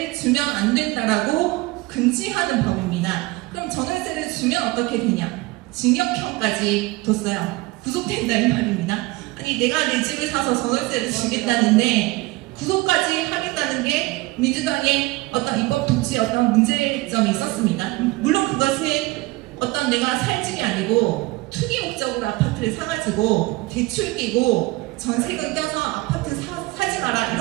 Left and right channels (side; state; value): left; quieter; 21.5 dB